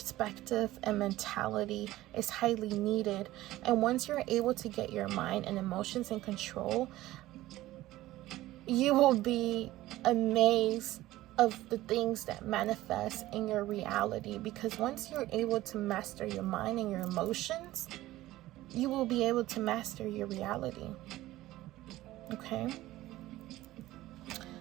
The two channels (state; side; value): quieter; left; 16.2 dB